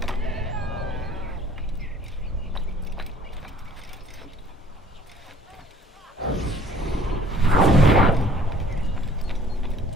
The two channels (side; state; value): both; normal; correlation 0.55